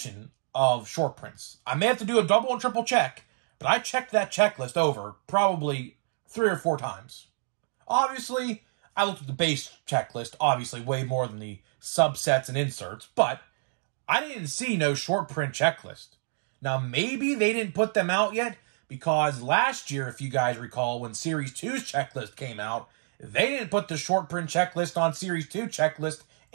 of short prints. I may have to do a double and triple check, but I checked that checklist over probably 3 or 4 times. Obviously, I looked at the base checklist, obviously way more than the subsets and inserts, but I didn't see no short print checklist. Now, maybe they didn't put them out yet, because last year, if you guys recall, when Series 2's checklist came out, they didn't put the short print checklist on Series 2 checklist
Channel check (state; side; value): silent; left; digital silence